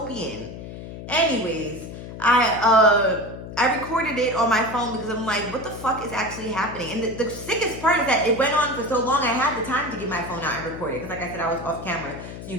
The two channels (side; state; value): left; noise; hum, 11 dB below the sound